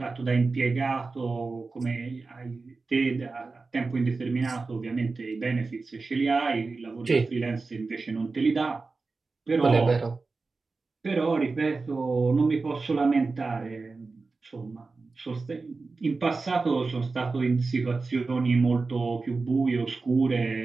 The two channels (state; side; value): quieter; left; 4.0 dB